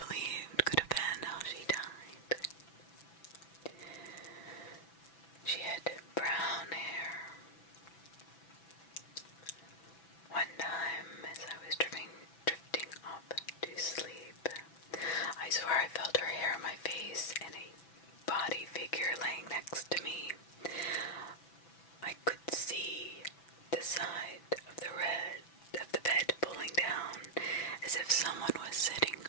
could have been how she died. She had brown hair. One time, as I was drifting off to sleep, I swear I felt her hair on my face and a body figure laying next to me. I could see the side of the bed pulling down as if someone was sitting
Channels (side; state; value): right; late; 6.0 ms